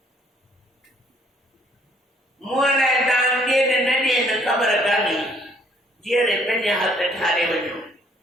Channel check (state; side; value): normal; both; correlation 0.63